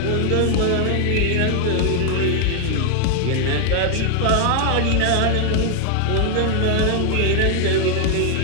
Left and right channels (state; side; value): different; both; correlation 0.00